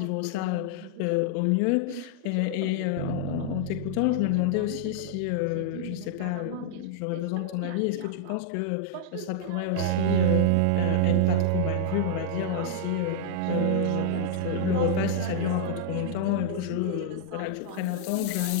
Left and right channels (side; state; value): both; different; correlation -0.01